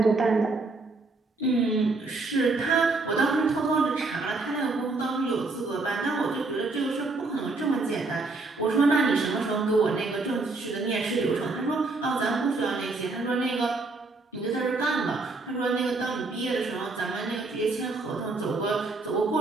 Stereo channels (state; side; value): quieter; left; 3.5 dB